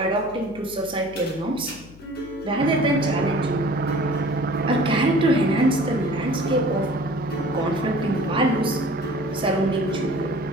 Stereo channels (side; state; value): left; noise; hum, 20 dB below the sound